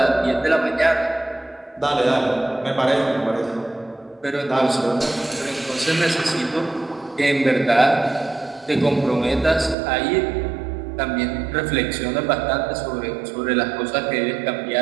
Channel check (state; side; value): drops out; left; at 9.8 s